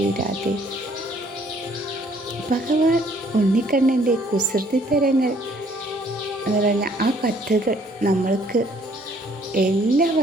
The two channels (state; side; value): normal; both; correlation 0.62